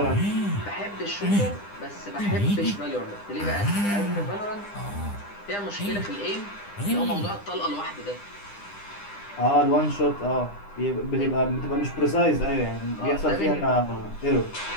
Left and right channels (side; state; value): right; late; 9.9 ms